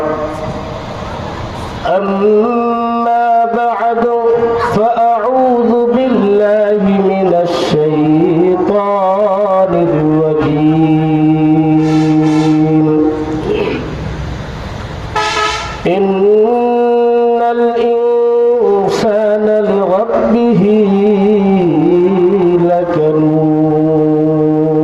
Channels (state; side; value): identical; both; correlation 1.00